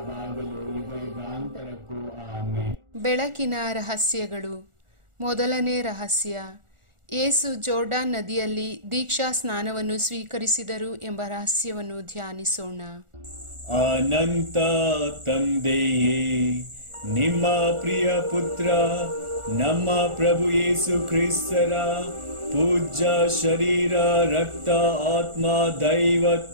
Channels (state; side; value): late; left; 1.4 ms